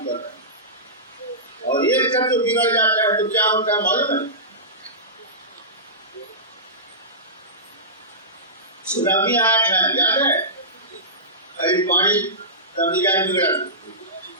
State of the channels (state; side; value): normal; both; correlation -0.19